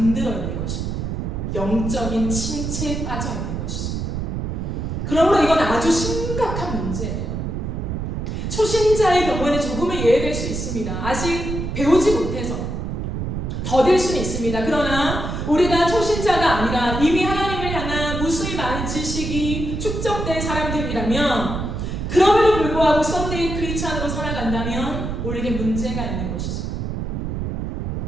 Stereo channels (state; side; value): noise; right; rumble, 3 dB below the sound